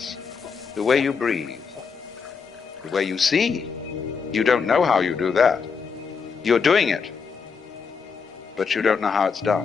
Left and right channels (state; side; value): quieter; right; 5.7 dB